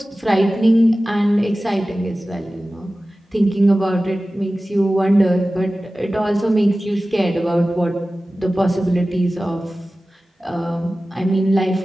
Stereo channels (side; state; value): both; normal; correlation 0.96